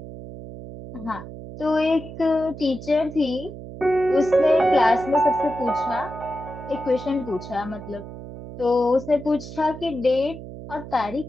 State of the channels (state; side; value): noise; right; hum, 12 dB below the sound